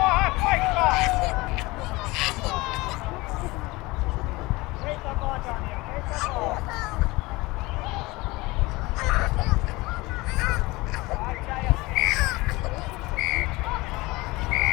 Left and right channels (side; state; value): right; quieter; 22.0 dB